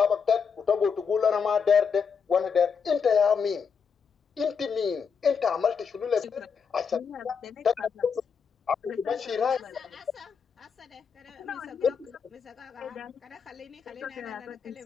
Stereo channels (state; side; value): quieter; right; 6.2 dB